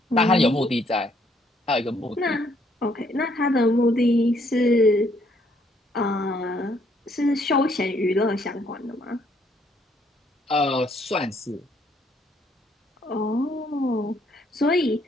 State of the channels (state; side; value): normal; both; correlation 0.68